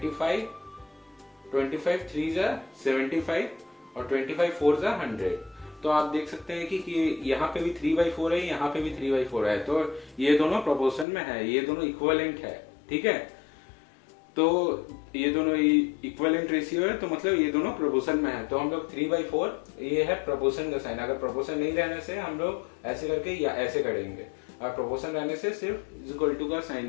3 75 और 25 4 100. तो आप देख सकते हैं कि यहाँ पे भी 3/4 है, यहाँ पे भी 3/4 है. तो ये दोनों प्रोपोर्शन में है, ये दोनों इक्विवेलेंट है. ठीक है. तो ये दोनों इक्विवेलेंट रेशियो है, तो मतलब ये दोनों प्रोपोर्शन में है. तो हम लोग 3/4 ये है प्रोपोर्शन का साइन. अगर प्रोपोर्शन नहीं रहने से हम लोग ऐसे करके या ऐसे करेंगे, और प्रोपोर्शन रहने से सिर्फ इक्वल टू का साइन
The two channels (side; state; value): right; drops out; at 11.1 s